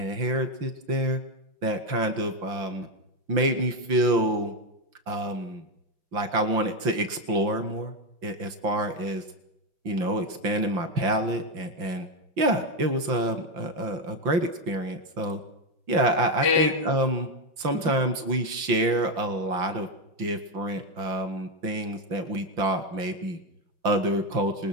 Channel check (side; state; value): left; late; 5.8 ms